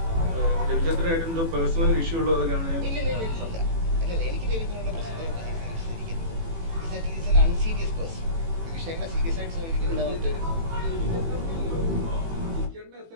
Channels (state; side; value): late; left; 18 ms